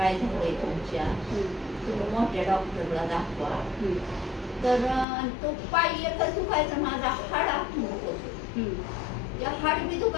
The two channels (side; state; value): right; drops out; at 5.1 s